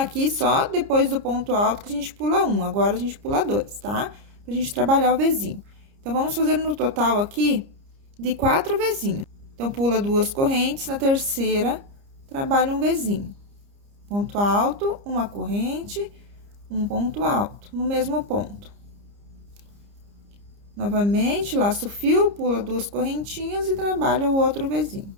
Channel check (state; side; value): late; left; 30 ms